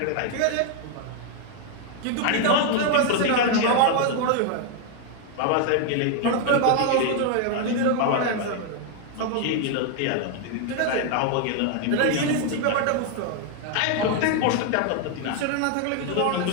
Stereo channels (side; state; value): both; different; correlation 0.00